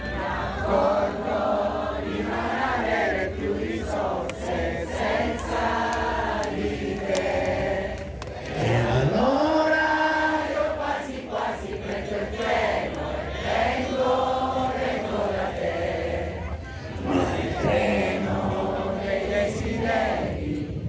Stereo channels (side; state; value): both; identical; correlation 1.00